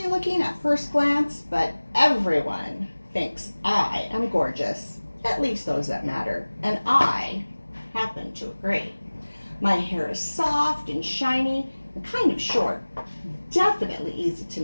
looking at first glance, but everyone thinks I am gorgeous. At least those that matter, and I happen to agree. My hair is soft and shiny and kind of short, definitely easy to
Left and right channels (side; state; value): both; inverted; correlation -1.00